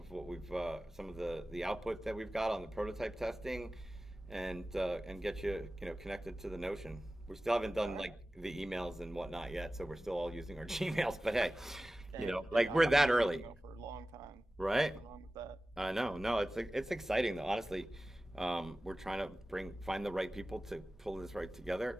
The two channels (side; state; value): both; normal; correlation 0.96